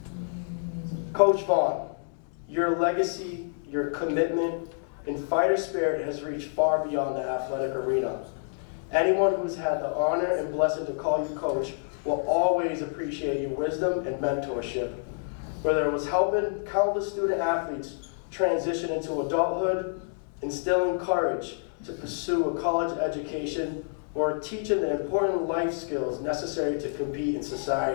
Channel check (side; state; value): right; silent; digital silence